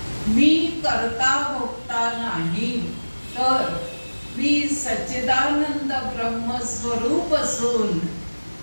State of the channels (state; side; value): inverted; both; correlation -1.00